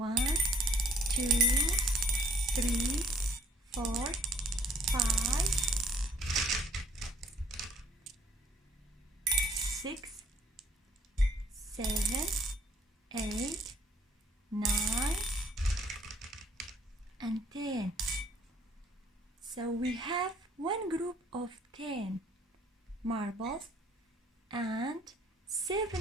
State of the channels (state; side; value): normal; both; correlation 0.61